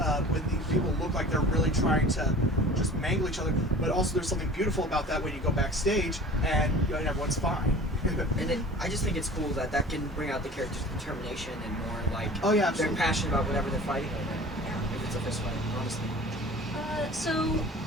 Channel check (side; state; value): both; normal; correlation 0.42